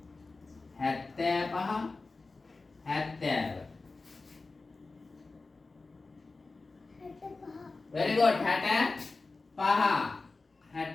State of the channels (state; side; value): quieter; right; 3.7 dB